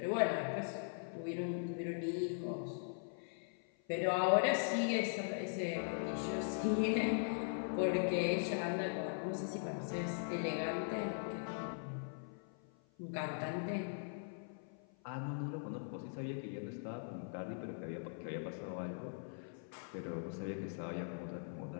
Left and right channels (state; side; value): silent; right; 51 dB below the other